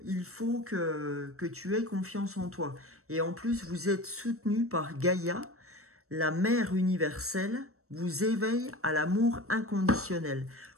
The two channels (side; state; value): left; late; 0.64 ms